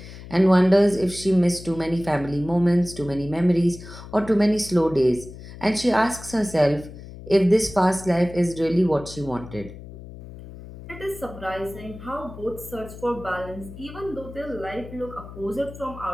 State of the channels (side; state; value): left; noise; hum, 15 dB below the sound